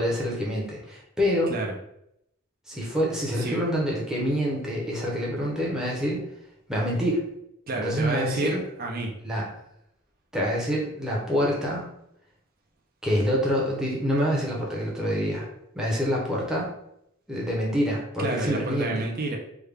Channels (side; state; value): both; normal; correlation 0.57